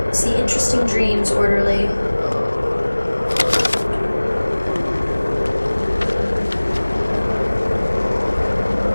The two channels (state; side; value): inverted; both; correlation -1.00